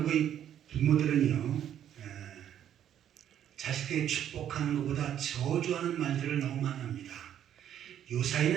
부모들은요 자식들이 축복하는 것보다 저주하는 말들을 너무 많이 합니다.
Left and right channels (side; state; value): left; quieter; 10.3 dB